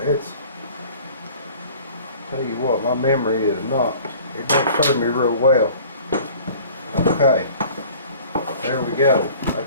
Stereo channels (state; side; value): inverted; both; correlation -0.48